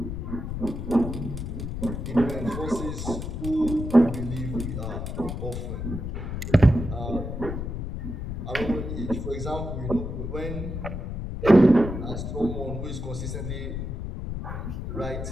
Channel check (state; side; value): noise; left; rumble, 5 dB below the sound